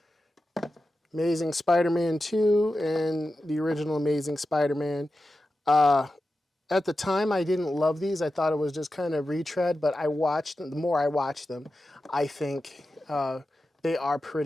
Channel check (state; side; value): normal; both; correlation 0.92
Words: Amazing Spider-Man 2 and the original Amazing Spider-Man. At the time, I didn't love these. I thought it was just kind of retread, but I watched them. The more I watch them, I think they are